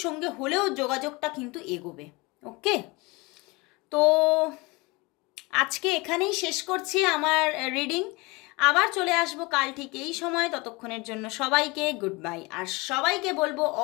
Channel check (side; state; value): right; quieter; 25.1 dB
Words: সঙ্গে হলেও যোগাযোগটা কিন্তু এগোবে। ওকে, তো আজকে এখানেই শেষ করছি আমার রিডিং। আবার চলে আসবো কাল ঠিক এই সময়, ততক্ষণের জন্য সবাইকে গুড বাই। আর সবাইকে বলবো